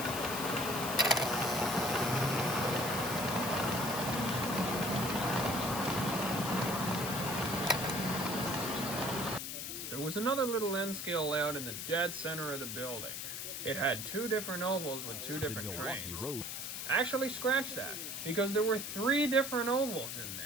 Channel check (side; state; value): left; noise; hiss, 5 dB below the sound